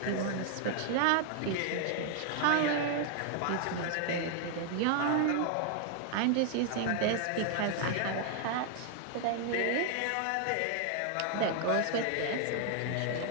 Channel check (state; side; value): different; both; correlation 0.00